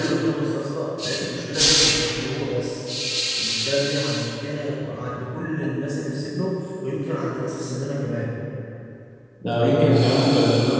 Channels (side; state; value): both; identical; correlation 1.00